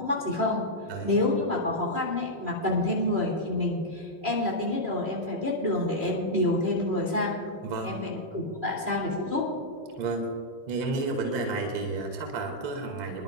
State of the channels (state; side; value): late; left; 3.0 ms